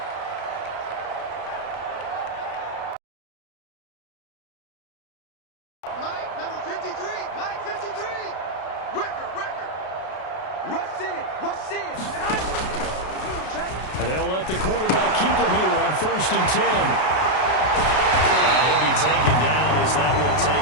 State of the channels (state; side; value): late; right; 32 ms